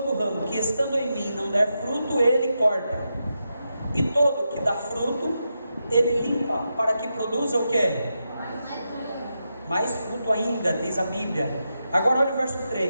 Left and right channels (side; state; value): both; inverted; correlation -0.87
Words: estando em mim não der fruto, ele corta, e todo que dá fruto, ele limpa, para que produza o que? Mais fruto ainda, diz a Bíblia. Agora olha o verso